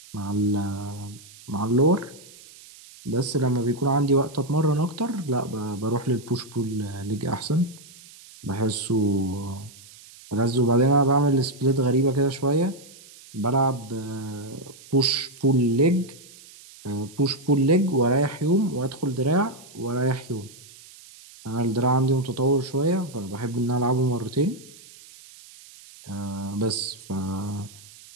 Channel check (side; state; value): right; noise; hiss, 21 dB below the sound